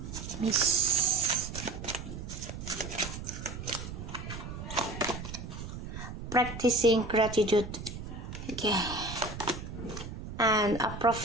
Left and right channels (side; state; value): right; noise; rumble, 9 dB below the sound